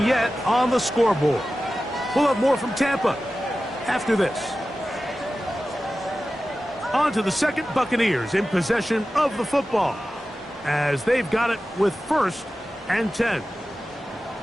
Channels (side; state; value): both; normal; correlation 0.94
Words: yet on the scoreboard. We'll have more from Tampa after this. On to the second, Buccaneers in possession of the football as they've got it with first and 10.